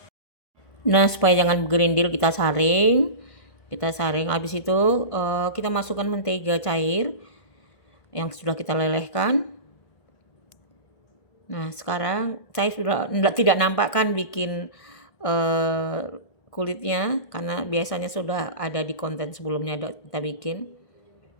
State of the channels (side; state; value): right; late; 1.5 ms